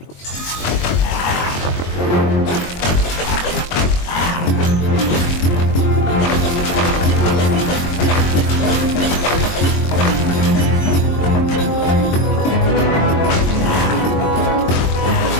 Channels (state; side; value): late; right; 22 ms